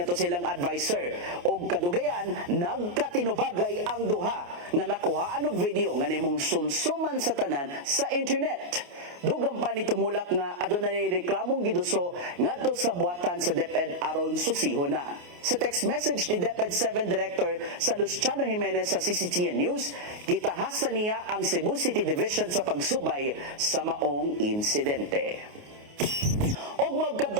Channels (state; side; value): late; left; 28 ms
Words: to silang advisor og kadugayan nagkatinubagay ang duha nga nakuhaan og video nga nimong sumsuman sa tanan sa internet. Dugang pa ni tumulak nga adunay reklamong giduso ngadto sa buhatan sa DepEd aron susihon na. Sa text message ni DepEd 7 Director sa Luciano Jimenez sa CCTN News, gitahasan niya ang Cebu City Division sa pagsubay sa maong insidente. Og